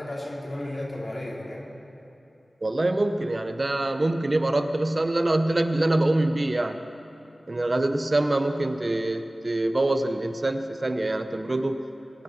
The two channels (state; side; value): normal; both; correlation 0.98